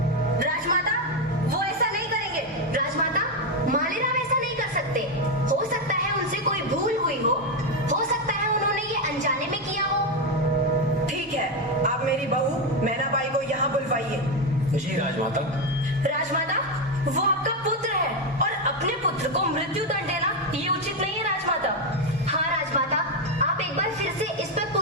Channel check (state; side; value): normal; both; correlation 0.08